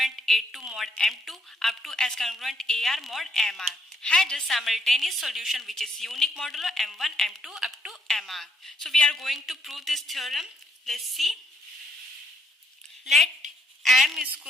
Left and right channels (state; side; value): normal; both; correlation 0.71